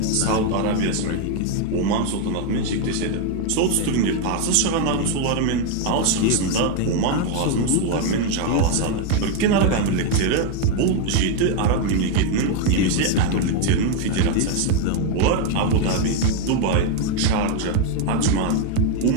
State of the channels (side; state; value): both; different; correlation 0.01